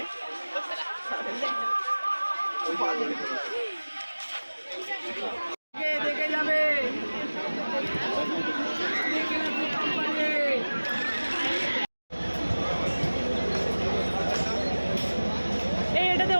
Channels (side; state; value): both; inverted; correlation -1.00